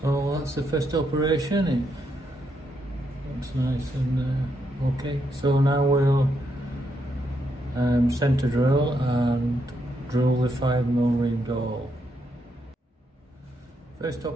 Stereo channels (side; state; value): both; normal; correlation 0.79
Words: that's the first operation. It looks nice and okay. So now we'll centre drill and drill the 5mm reamed hole. First